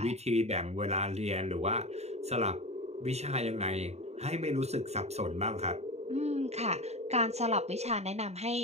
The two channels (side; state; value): left; late; 0.31 ms